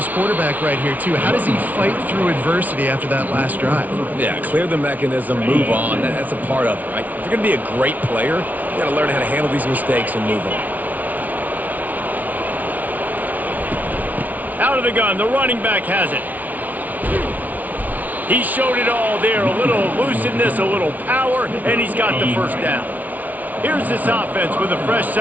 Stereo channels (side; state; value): left; late; 0.076 ms